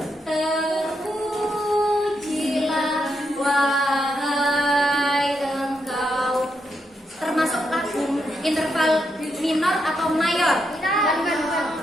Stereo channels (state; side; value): normal; both; correlation 0.81